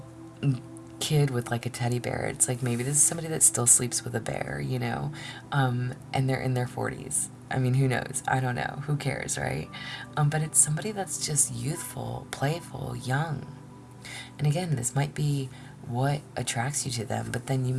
kid with like a teddy bear. It's like maybe this is somebody that still sleeps with a bear, and they're in their 40s. I mean, who knows? I don't know. Who cares, right? But it's somebody that's just youthful, playful, young. And again, this might be what attracts you to them, but then you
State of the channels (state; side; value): identical; both; correlation 1.00